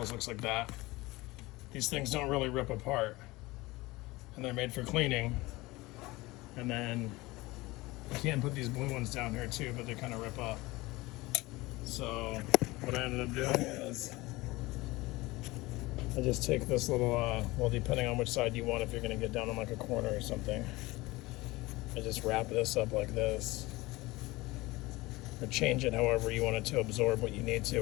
looks like that. These things don't really rip apart, and they're made for cleaning. And then you can put these blue ones down here too, but they kind of rip up. So what I ended up doing is I just take this little, well, depending on which side you want, if you're going to get down on like a corner or something, I just wrap this up like this, or change it however you want it to absorb what you need to,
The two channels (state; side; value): quieter; right; 20.9 dB